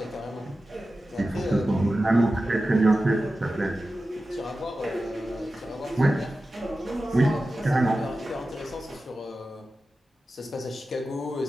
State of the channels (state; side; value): normal; both; correlation 0.94